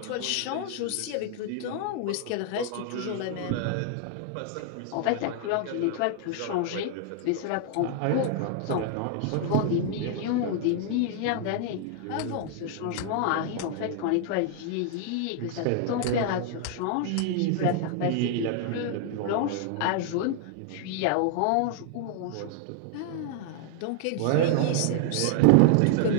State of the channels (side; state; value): both; different; correlation 0.00